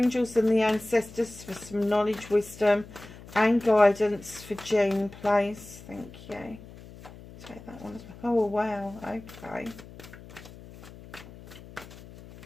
and the ancestors for some knowledge, wisdom and guidance for June, please. Thank you. Take that one as well. Oh, wow. Okay.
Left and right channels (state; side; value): noise; left; hum, 18 dB below the sound